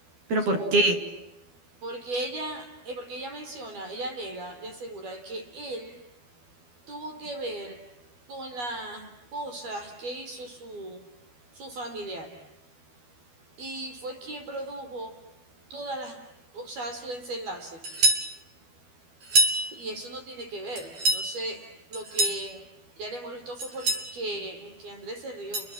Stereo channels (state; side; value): late; left; 12 ms